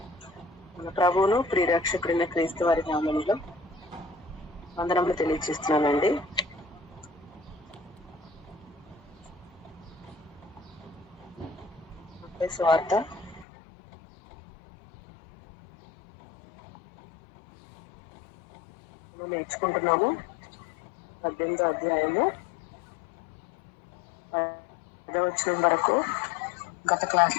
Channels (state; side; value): drops out; right; at 13.5 s